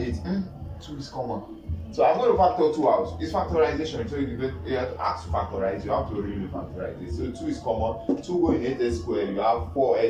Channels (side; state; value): both; identical; correlation 1.00